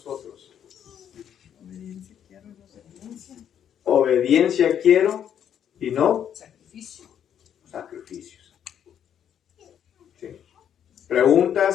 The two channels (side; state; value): right; quieter; 9.2 dB